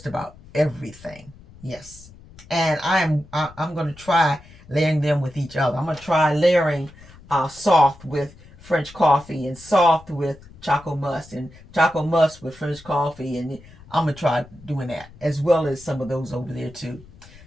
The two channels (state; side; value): noise; left; rumble, 22 dB below the sound